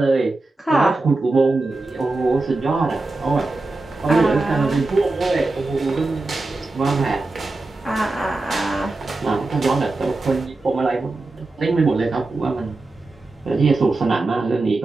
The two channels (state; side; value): quieter; left; 3.2 dB